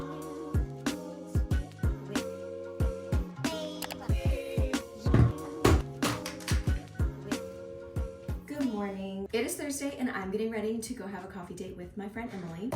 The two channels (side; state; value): both; identical; correlation 1.00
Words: It is Thursday and I'm getting ready to go have a coffee date with my friend Emily.